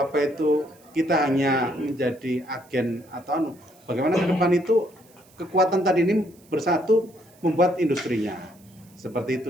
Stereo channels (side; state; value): right; noise; hiss, 29 dB below the sound